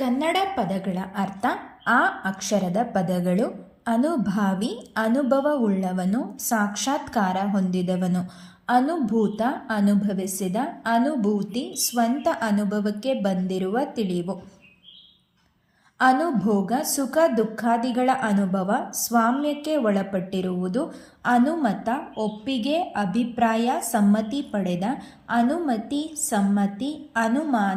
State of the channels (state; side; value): identical; both; correlation 1.00